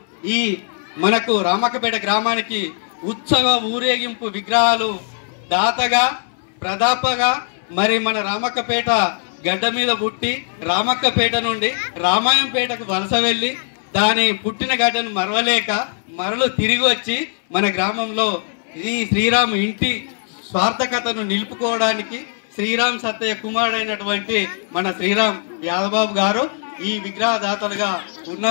ఈ మనకు రామక్కపేట గ్రామానికి ఉత్సవ ఊరేగింపు విగ్రహాలు దాతగా ప్రదాపగా మరి మన రామక్కపేట గడ్డ మీద పుట్టి రామక్కపేట నుండి రామాయంపేటకు వలస వెళ్ళి దాని పుట్టిన గడ్డను మరవలేక మరలు తిరిగి వచ్చి మన గ్రామంలో ఈ శ్రీరాము ఇంటి స్వార్థకతను నిలుపుకోవడానికి శ్రీరామ్ సత్తయ్య కుమారుడైనటువంటి మన శ్రీరామ్ యాదబాబు గారు ఈ విగ్రహదాతలుగా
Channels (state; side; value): silent; right; 63 dB below the other